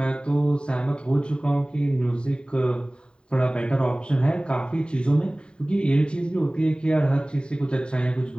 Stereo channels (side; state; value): right; late; 0.050 ms